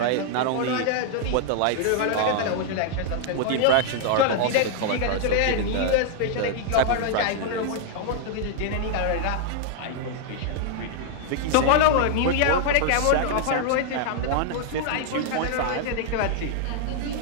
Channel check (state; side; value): different; both; correlation 0.00